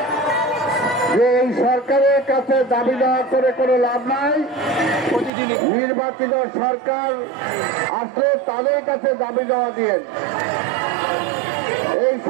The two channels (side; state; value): left; drops out; at 5.3 s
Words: যে এই সরকারের কাছে দাবি দেওয়া করে কোনো লাভ নাই? নির্বাচিত সরকার আসলে তাদের কাছে দাবি দেওয়া দিয়েন। এই